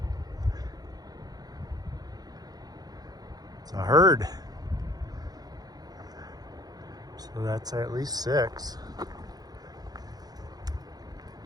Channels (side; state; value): left; late; 0.19 ms